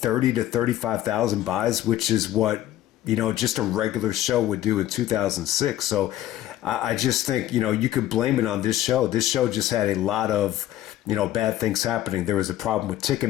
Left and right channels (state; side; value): quieter; right; 13.6 dB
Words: to 35,000 buys, which is what, just a regular show would do in 2006. So I just think, you could blame it on this show. This show just had a lot of, bad things happening. There was a problem with